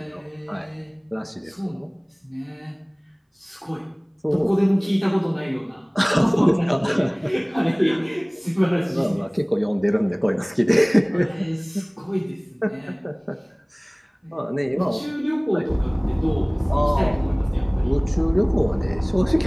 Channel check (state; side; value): identical; both; correlation 1.00